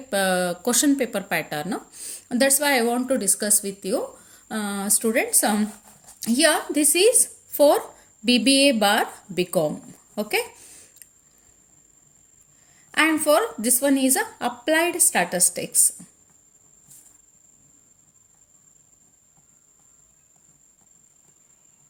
question paper pattern. That's why I want to discuss with you students. Here this is for BBA bar BCOM. Okay, and for this one is applied statistics.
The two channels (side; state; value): both; identical; correlation 1.00